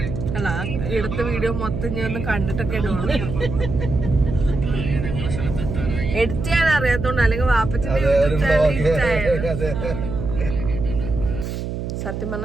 അല്ല, എടുത്ത വീഡിയോ മൊത്തം ഞാൻ ഒന്ന് കണ്ടിട്ടൊക്കെ ഇടുവാണ്. എഡിറ്റ് ചെയ്യാൻ അറിയാത്തോണ്ട്, അല്ലെങ്കിൽ വാപ്പച്ചിന്റെ യൂട്യൂബ് ചാനൽ ഇഷ്ടമായിരുന്നു. സത്യം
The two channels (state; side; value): noise; right; hum, 5 dB below the sound